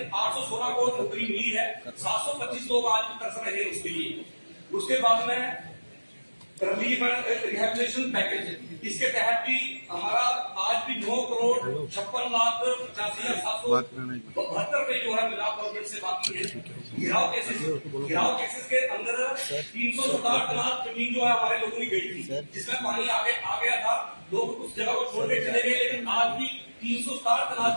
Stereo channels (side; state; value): both; inverted; correlation -1.00